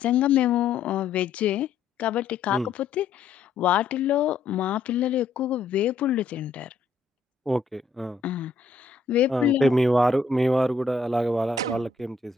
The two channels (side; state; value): right; quieter; 4.5 dB